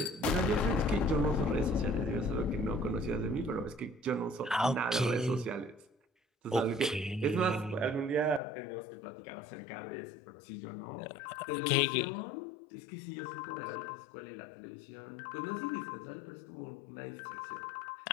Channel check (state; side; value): drops out; right; at 8.4 s